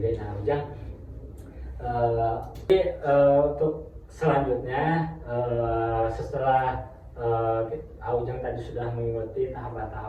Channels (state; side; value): identical; both; correlation 1.00